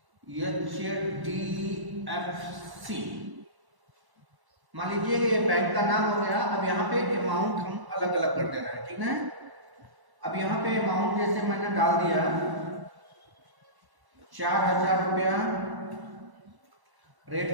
HDFC। मान लीजिए ये बैंक का नाम हो गया। अब यहाँ पे अमाउंट हम अलग अलग कर देना है, ठीक है। अब यहाँ पे अमाउंट जैसे मैंने डाल दिया 4,000 रुपया,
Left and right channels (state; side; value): late; left; 1.1 ms